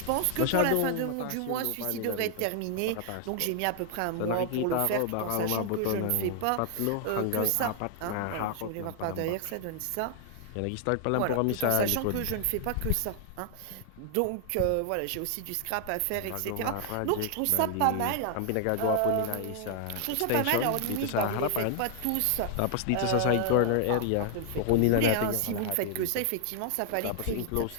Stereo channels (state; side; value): different; both; correlation 0.00